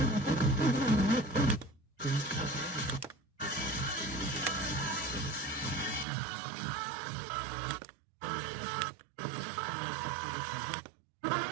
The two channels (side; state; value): left; drops out; at 6.1 s